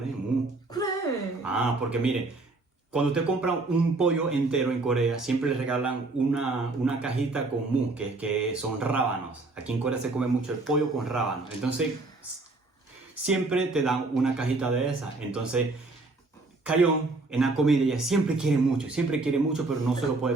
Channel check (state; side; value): quieter; left; 3.3 dB